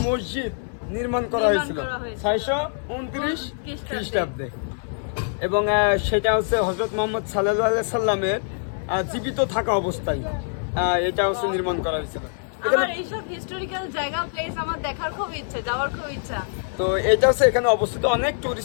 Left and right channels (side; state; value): right; silent; 62 dB below the other